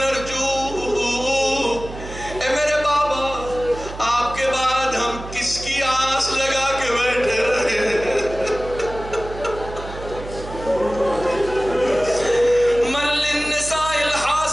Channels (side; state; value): right; noise; hum, 12 dB below the sound